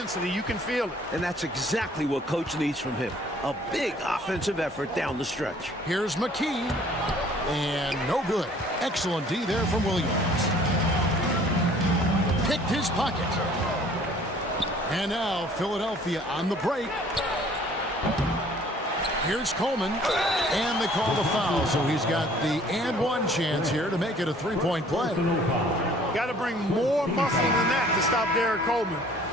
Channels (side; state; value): both; normal; correlation 0.55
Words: You can feel it. And that's exactly what Coach needs from him. A big offensive effort down the stretch. Here's McKee, and no good. Excellent D there from Williams. Picked his pocket. And now Philadelphia on the break. Here's Coleman, and they call the foul, so he's got the and one chance here to make it a three-point play. Got to bring more muscle than that to stop Derek Coleman